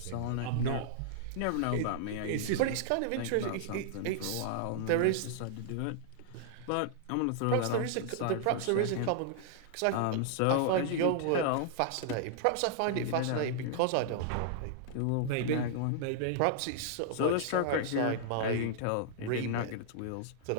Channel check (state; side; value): different; both; correlation -0.01